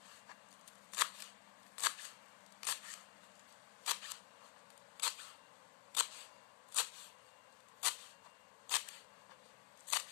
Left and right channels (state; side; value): quieter; right; 28.3 dB